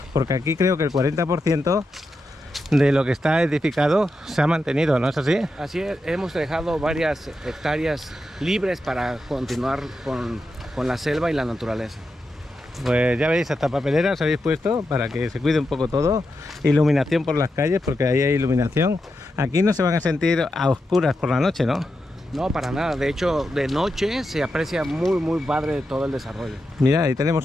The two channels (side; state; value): both; normal; correlation 0.87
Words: porque aquí creo que el 40% de lo que está edificado se ha mantenido, ¿no es así? Así es, hemos dejado varias hectáreas libres para continuar con la selva y la naturaleza. Pues ya veis, hasta papeleras habéis puesto para que se cuide un poco todo. Iluminación por las calles, porque ahí hay iluminación. Aquí no se van a sentir a oscuras por la noche, ¿no? No, para nada. De hecho, de noche se aprecia muy padre todo el desarrollo. Mira, ahí tenemos